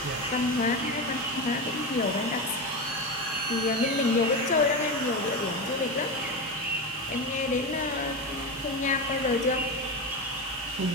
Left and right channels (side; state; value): both; normal; correlation 0.18